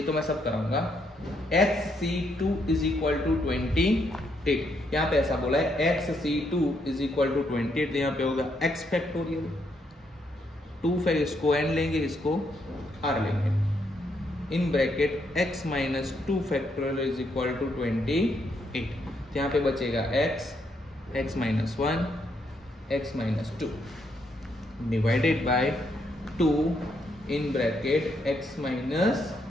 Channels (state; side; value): normal; both; correlation 0.76